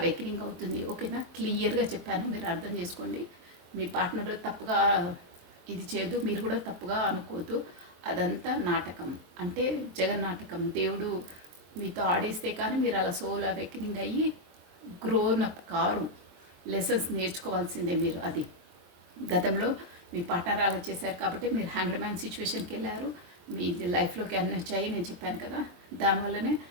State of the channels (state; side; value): late; left; 23 ms